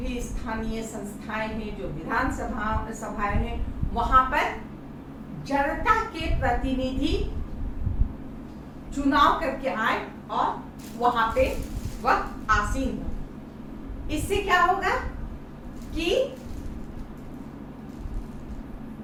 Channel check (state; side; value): identical; both; correlation 1.00